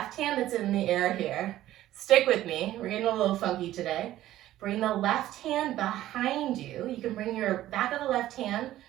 hand that's in the air here, stick with me. We're getting a little funky today. Bring the left hand behind you. You can bring your back of the left hand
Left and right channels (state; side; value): quieter; left; 14.0 dB